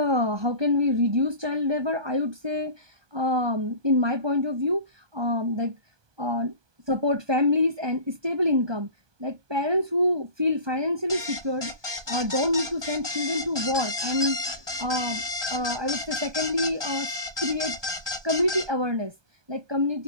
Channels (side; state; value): left; late; 1.2 ms